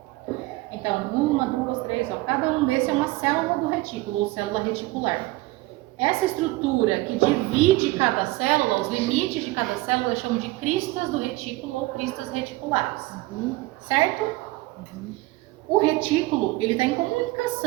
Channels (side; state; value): left; quieter; 20.0 dB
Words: Então, 1, 2, 3, ó, cada um desses é uma célula do retículo, ou célula reticular. Essa estrutura que divide cada célula, os limites de cada célula, eu chamo de cristas do retículo ou cristas reticulares. Certo? O retículo, ele está em